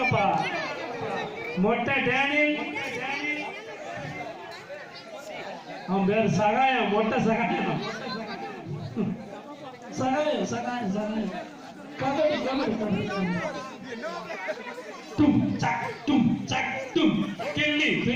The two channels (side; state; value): both; identical; correlation 1.00